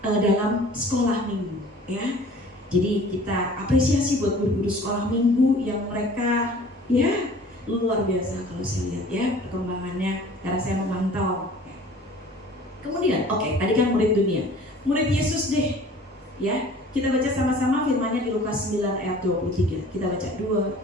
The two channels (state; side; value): normal; both; correlation 0.47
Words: dalam sekolah minggu, ya. Jadi kita apresiasi buat guru-guru sekolah minggu yang mereka, ya, luar biasa kalau saya lihat, ya, perkembangannya karena saya memantau. Kemudian, tadi kan murid dunia, murid Yesus deh, ya. Kita baca sama-sama firman-Nya di Lukas 9 ayat 23. Kita baca 2,